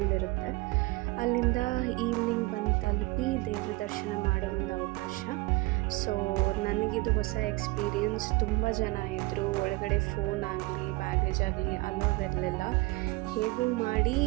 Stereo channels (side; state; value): left; quieter; 22.5 dB